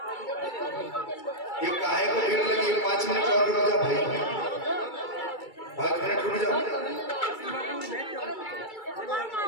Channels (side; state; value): right; late; 2.3 ms